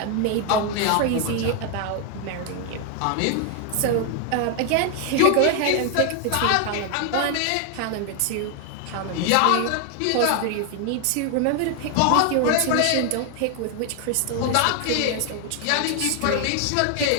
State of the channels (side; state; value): both; different; correlation 0.00